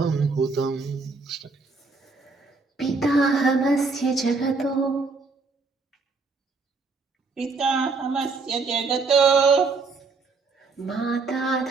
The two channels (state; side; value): quieter; left; 4.1 dB